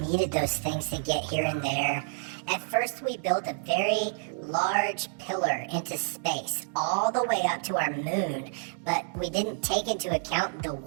those things to get here and there. At first we built a very large pillar into space, all the way up to our moon, but we didn't take into account the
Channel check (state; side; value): silent; left; digital silence